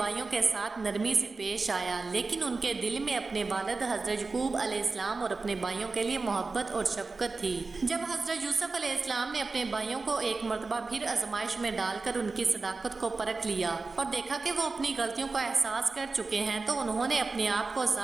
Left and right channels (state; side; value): quieter; left; 3.9 dB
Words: کے ساتھ نرمی سے پیش آیا لیکن ان کے دل میں اپنے والد حضرت یعقوب علیہ السلام اور اپنے بھائیوں کے لیے محبت اور شفقت تھی۔ جب حضرت یوسف علیہ السلام نے اپنے بھائیوں کو ایک مرتبہ پھر آزمائش میں ڈال کر ان کی صداقت کو پرکھ لیا اور دیکھا کہ وہ اپنی غلطیوں کا احساس کر چکے ہیں تو انہوں نے اپنے آپ کو